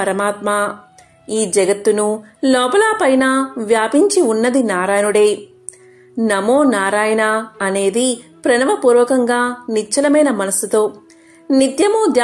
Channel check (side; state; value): both; identical; correlation 1.00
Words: ఈ జగత్తును లోపల పైన వ్యాపించి ఉన్నది నారాయణుడే. నమో నారాయణ అనేది ప్రణవపూర్వకంగా నిశ్చలమైన మనస్సుతో నిత్యము